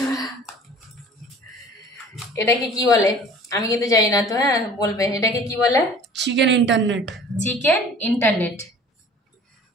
ওরা। এটাকে কি বলে আমি কিন্তু জানি না, তো হ্যাঁ বলবে এটাকে কি বলে। Chicken internet. Chicken internet.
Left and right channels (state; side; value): normal; both; correlation 0.47